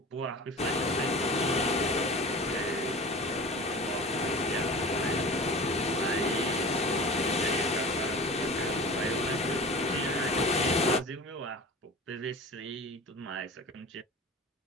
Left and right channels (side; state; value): both; normal; correlation 0.36